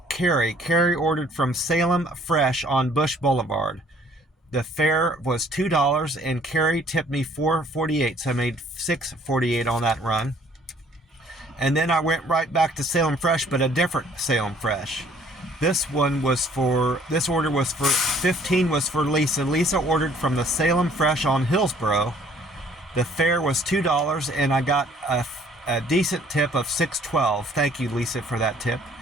Carrie. Carrie ordered from Salem Fresh on Bush Boulevard. The fare was $2 and Carrie tipped me $4.48, so I made $6.48 on that run. And then I went right back to Salem Fresh, but a different Salem Fresh. This order was for 15 was for Lisa. Lisa ordered from the Salem Fresh on Hillsborough. The fare was $2 and I got a decent tip of $6.12. Thank you, Lisa, for that tip.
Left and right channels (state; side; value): normal; both; correlation 0.59